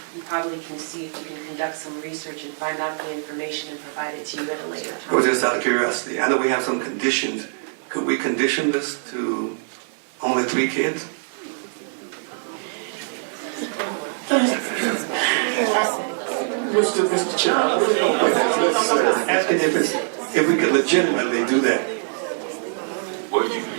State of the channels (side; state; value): left; silent; 63 dB below the other